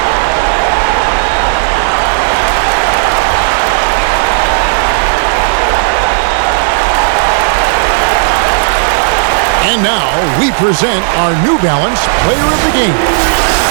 And now we present our New Balance Player of the Game.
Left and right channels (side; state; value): left; silent; digital silence